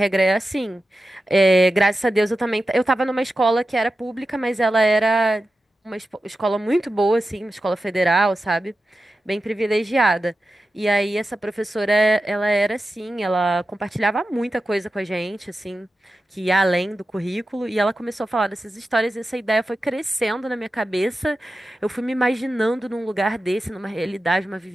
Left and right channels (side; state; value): both; normal; correlation 0.93